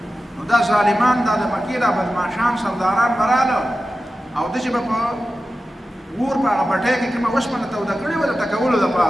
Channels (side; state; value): both; normal; correlation 0.93